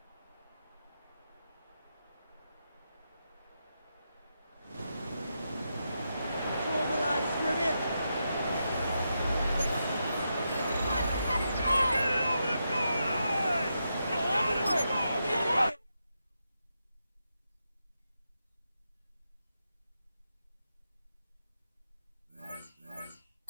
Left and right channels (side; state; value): both; inverted; correlation -0.85